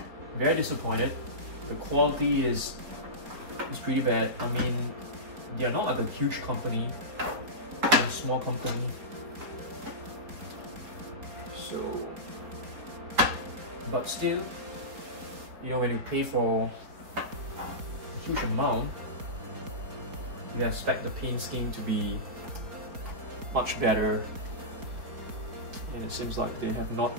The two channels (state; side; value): late; left; 4.6 ms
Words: very disappointed. The quality is pretty bad. I mean, they are not like a huge company, they're a small company. So, but still, you know, when you pay for a huge amount, you expect the paint scheme to be much better, and it seems like they have not